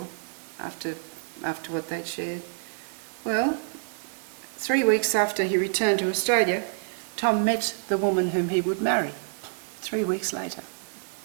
after what they'd shared. Well, 3 weeks after he returned to Australia, Tom met the woman whom he would marry, 3 weeks later.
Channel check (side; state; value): left; silent; digital silence